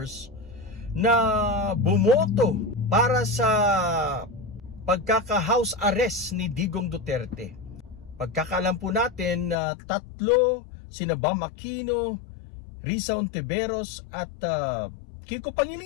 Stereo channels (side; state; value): right; drops out; at 9.6 s